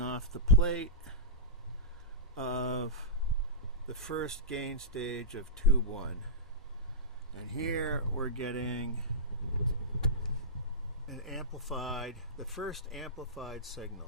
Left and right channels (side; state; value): both; normal; correlation -0.15